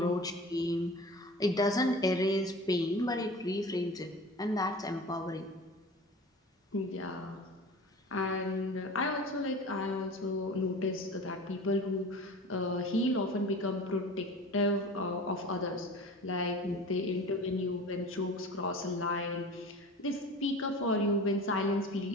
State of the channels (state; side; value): normal; both; correlation 0.37